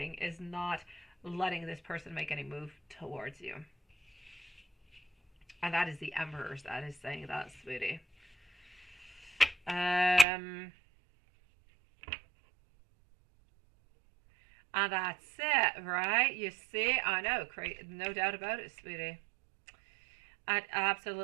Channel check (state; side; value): drops out; left; at 10.2 s